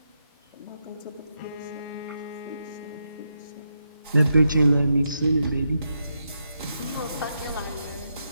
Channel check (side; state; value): both; inverted; correlation -0.84